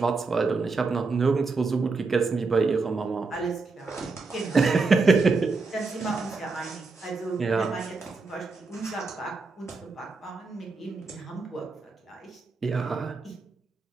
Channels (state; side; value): quieter; left; 4.1 dB